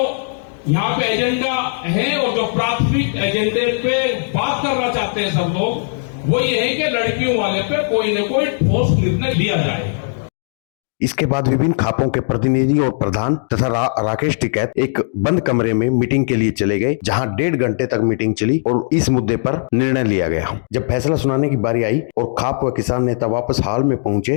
यहाँ पे एजेंडा है और जो प्राथमिक एजेंडे पे बात करना चाहते हैं सब लोग, वो ये है कि लड़कियों वाले पे कोई न कोई ठोस निर्णय लिया जाए। इसके बाद विभिन्न खापों के प्रतिनिधि और प्रधान तथा राकेश टिकैत एक बंद कमरे में मीटिंग के लिए चले गए, जहां 1.5 घंटे तक मीटिंग चली और इस मुद्दे पर निर्णय लिया गया। जब फैसला सुनाने की बारी आई और खाप व किसान नेता वापस हाल में पहुंचे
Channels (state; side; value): silent; right; digital silence